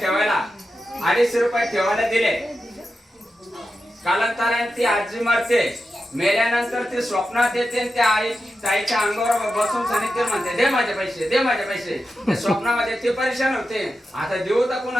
250 रुपये ठेवायला दिले. कालांतराने ती आजी मरते, मेल्यानंतर ती स्वप्नात येते, त्या ताईच्या अंगावर बसून सांगितले म्हणते दे माझे पैसे, दे माझे पैसे. स्वप्नामध्ये ती परेशान होते. आता देऊ तर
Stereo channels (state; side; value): normal; both; correlation 0.90